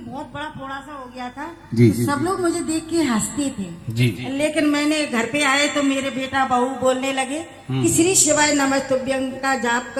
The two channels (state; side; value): identical; both; correlation 1.00